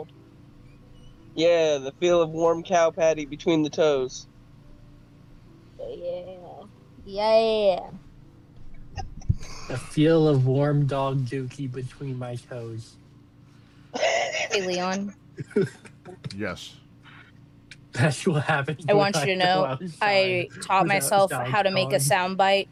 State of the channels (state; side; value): identical; both; correlation 1.00